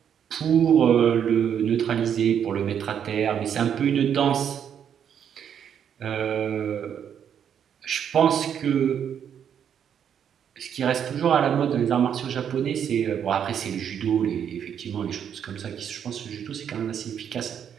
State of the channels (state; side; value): quieter; left; 8.5 dB